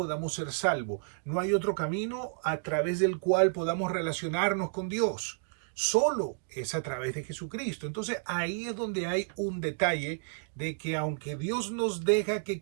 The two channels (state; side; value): silent; left; digital silence